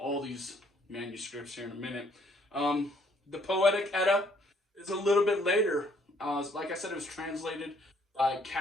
these manuscripts here in a minute. The Poetic Edda is a little bit later. Like I said, it was translated by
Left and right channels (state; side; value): normal; both; correlation 0.65